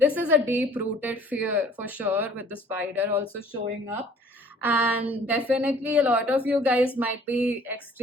is a deep rooted fear for sure, with the spider also showing up. And definitely a lot of you guys might be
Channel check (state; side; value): normal; both; correlation 0.54